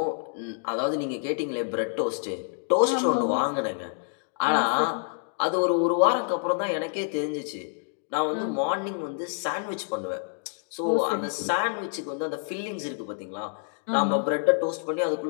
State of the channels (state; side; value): silent; right; 59 dB below the other